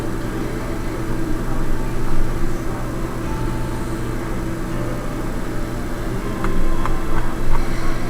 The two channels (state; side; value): identical; both; correlation 1.00